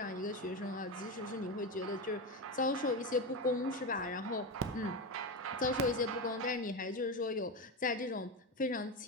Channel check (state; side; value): normal; both; correlation 0.17